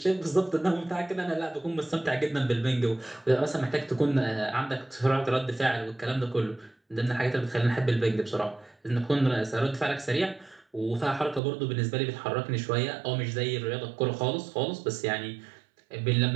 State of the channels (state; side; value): drops out; left; at 11.4 s